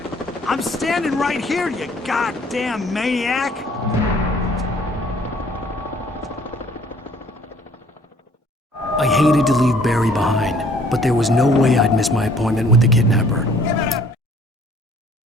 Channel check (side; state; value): both; normal; correlation 0.57